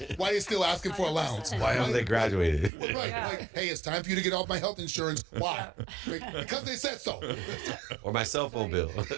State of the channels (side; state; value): left; drops out; at 2.7 s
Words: they still asking for allowance. Why haven't they graduated? Right, Yeah. like, hey, it's time for you to get off my health insurance. Why? Because they said so. Or my cell phone bill.